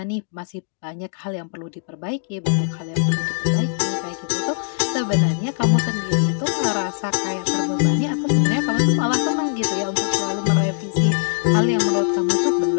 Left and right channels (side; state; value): right; silent; digital silence